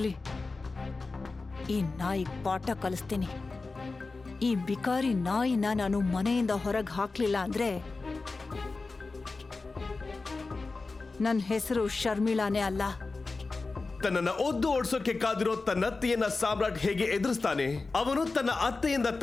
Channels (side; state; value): right; quieter; 3.8 dB